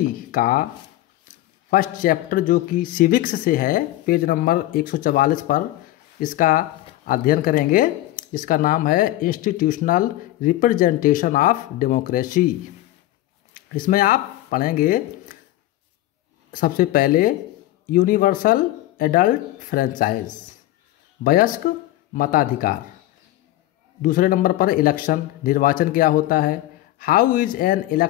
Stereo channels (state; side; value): quieter; right; 15.5 dB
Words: का फर्स्ट चैप्टर जो कि सिविक्स से है, पेज नंबर 144 पर इसका अध्ययन करेंगे। इसका नाम है इंस्टीट्यूशनल रिप्रेजेंटेशन ऑफ डेमोक्रेसी। इसमें आप पढ़ेंगे सबसे पहले यूनिवर्सल एडल्ट फ्रेंचाइज, वयस्क मताधिकार। दूसरे नंबर पर इलेक्शन, निर्वाचन क्या होता है। How is an